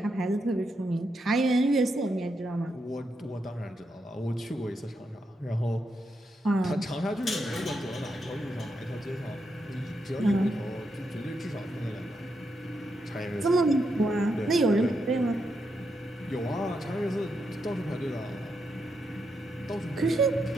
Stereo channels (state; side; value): normal; both; correlation 0.82